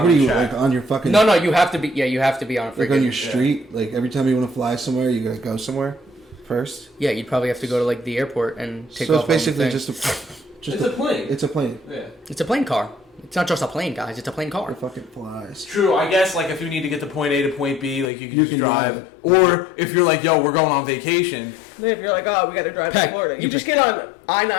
what are the you track. like on your fucking? No, you have to be. Yeah, you have to be on a Like on your freaking. street. Like every time you want to fly somewhere, you gotta go somewhere first. Yeah, you'd probably have to go to like the airport and take So off. it's basically on the just thing. It's a plane. It's a plane. Yeah. It's a plane car. It's not just a plane, guys. It's a plane car. It fucking flies. True, I guess like if you need to get to point A to point B, like you can You just can drive drive. Or if you're like, yo, we're going on vacation. Then if you're like, oh, we gotta drive Heck, to Florida. you You just get on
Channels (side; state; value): right; drops out; at 18.1 s